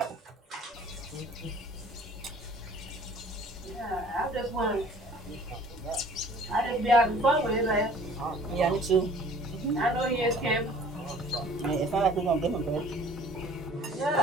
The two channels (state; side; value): normal; both; correlation 0.51